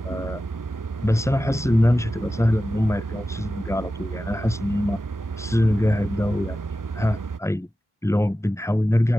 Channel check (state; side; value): normal; both; correlation 0.93